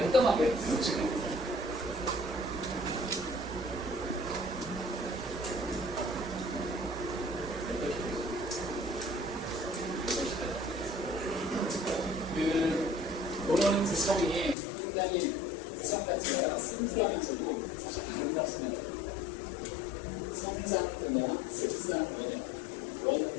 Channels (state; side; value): drops out; right; at 14.6 s